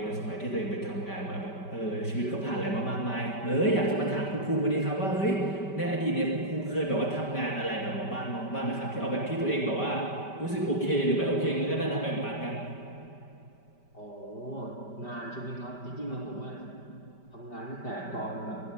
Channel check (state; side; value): late; right; 5.1 ms